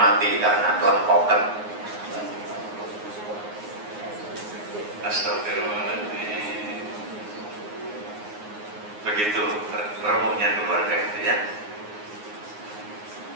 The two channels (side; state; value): left; late; 9.6 ms